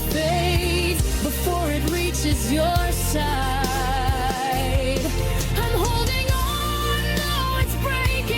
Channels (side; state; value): both; identical; correlation 1.00